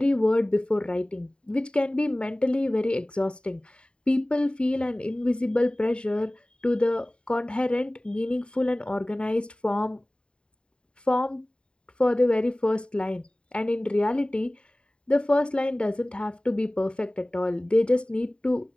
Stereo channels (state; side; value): late; right; 0.053 ms